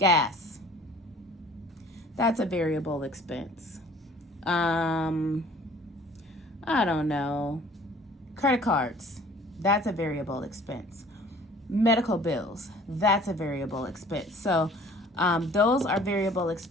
That's a variable expense. I don't know. Credit cards. That's a variable expense. Medical bills. That's a variable expense. So those are variable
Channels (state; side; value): normal; both; correlation 0.51